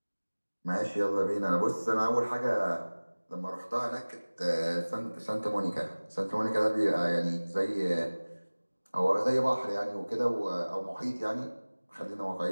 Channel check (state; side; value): inverted; both; correlation -1.00